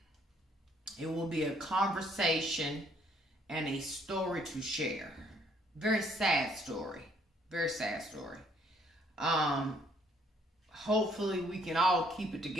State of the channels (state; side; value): normal; both; correlation 0.66